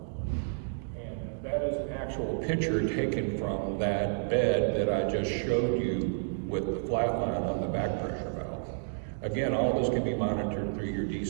And that is an actual picture taken from that bed that I just showed you with the flat line on the back pressure valve. Again, all this can be monitored through your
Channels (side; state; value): left; silent; digital silence